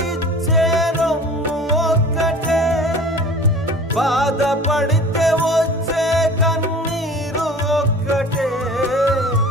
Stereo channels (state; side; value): normal; both; correlation 0.42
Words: రొమ్ము ఒక్కటే బాధపడితే వచ్చే కన్నీరు ఒక్కటే